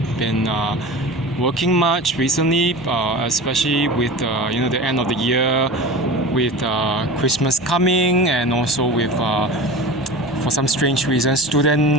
been working much recently, especially with the end of the year, with Christmas coming, and also with for some strange reasons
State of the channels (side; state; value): right; noise; rumble, 29 dB below the sound